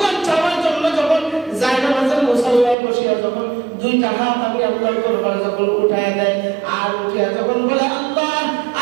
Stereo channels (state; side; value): drops out; left; at 2.8 s